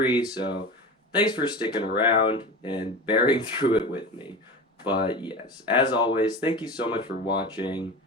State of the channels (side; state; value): both; normal; correlation 0.30